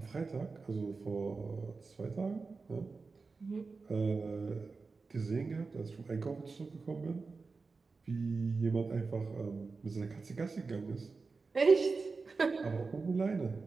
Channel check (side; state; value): left; quieter; 4.3 dB